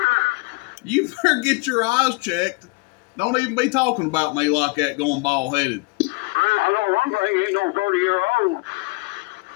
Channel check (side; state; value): right; quieter; 26.9 dB